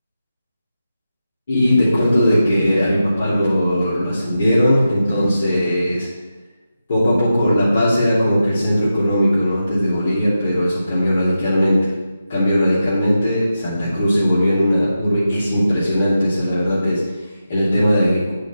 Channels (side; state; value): both; inverted; correlation -0.90